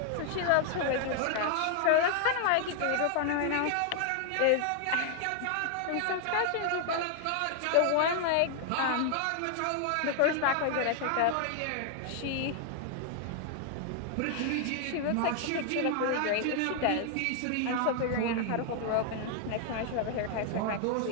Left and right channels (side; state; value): both; different; correlation 0.00